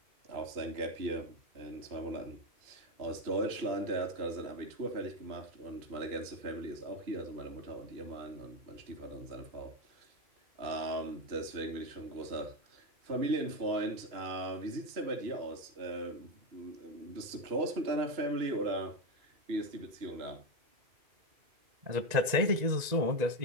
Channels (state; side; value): late; left; 2.0 ms